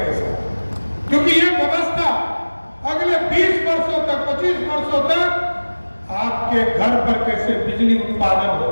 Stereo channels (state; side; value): inverted; both; correlation -1.00